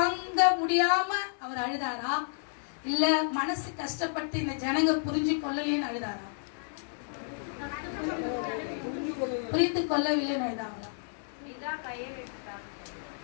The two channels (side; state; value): right; silent; 56 dB below the other